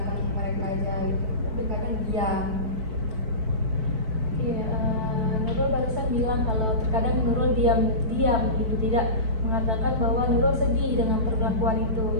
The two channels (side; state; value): left; late; 4.6 ms